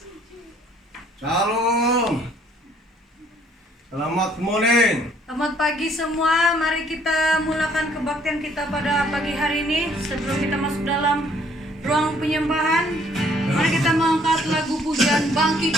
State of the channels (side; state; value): both; normal; correlation 0.62